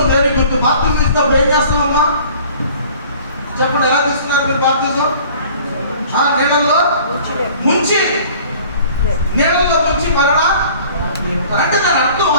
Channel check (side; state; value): both; inverted; correlation -0.50